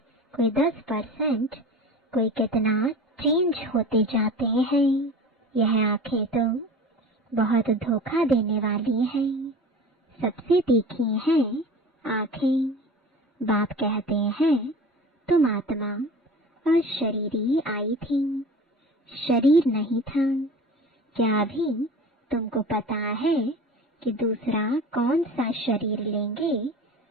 कोई 10%, कोई कितना चेंज होते जाते हैं। यह आंखें तो बहुत धोखा देने वाली हैं। सबसे तीखी हैं आंखें। बाप कहते हैं तुम आत्मा और शरीरी आई थी, शरीर नहीं था। क्या अभी तुमको पता है कि दूसरा कौन सा शरीर लेंगे,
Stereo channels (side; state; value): both; normal; correlation 0.37